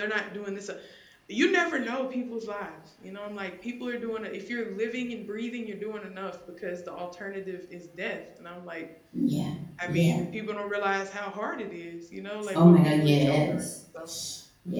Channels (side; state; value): both; identical; correlation 1.00